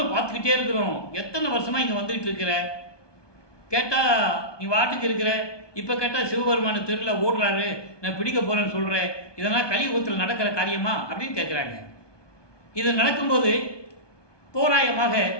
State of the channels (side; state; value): right; late; 1.2 ms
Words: பார்த்துக்கிட்டே இருக்கிறோம், எத்தனை வருஷமாக இங்கே வந்துக்கிட்டு இருக்கிற, கேட்டால் நீ வாட்டுக்கு இருக்கிற, இப்போ கேட்டால் சிவபெருமான தெருவில் ஓடுறாரு, நான் பிடிக்க போகிறேன்னு சொல்கிறேன், இதெல்லாம் கலியுகத்தில் நடக்கிற காரியமா அப்படின்னு கேட்குறாங்க. இது நடக்கும்போது தோராயமாக